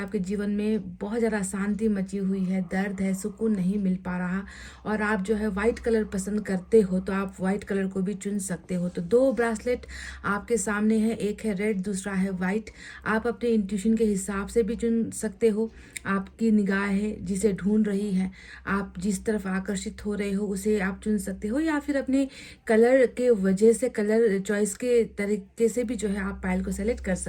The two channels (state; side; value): identical; both; correlation 1.00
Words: जीवन में बहुत ज़्यादा शांति मची हुई है, दर्द है, सुकून नहीं मिल पा रहा और आप जो है वाइट कलर पसंद करते हो, तो आप वाइट कलर को भी चुन सकते हो। तो 2 ब्रासलेट आपके सामने है, एक है रेड, दूसरा है वाइट। आप अपने इंट्यूशन के हिसाब से भी चुन सकते हो। आपकी निगाह है जिसे ढूंढ रही है, आप जिस तरफ आकर्षित हो रहे हो उसे आप चुन सकते हो, या फिर अपने कलर के वजह से, कलर चॉइस के तरीके से भी जो है आप पायल को सेलेक्ट कर